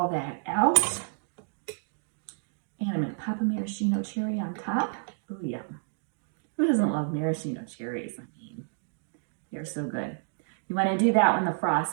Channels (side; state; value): left; silent; digital silence